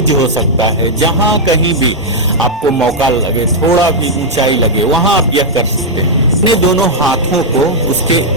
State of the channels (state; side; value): normal; both; correlation -0.04